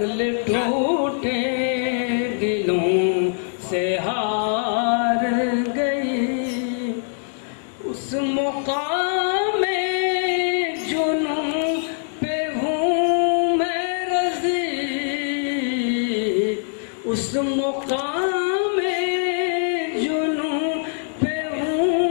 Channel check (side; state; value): right; silent; digital silence